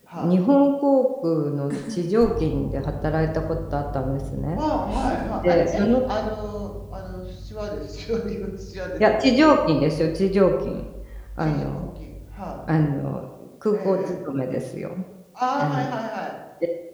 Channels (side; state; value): both; identical; correlation 1.00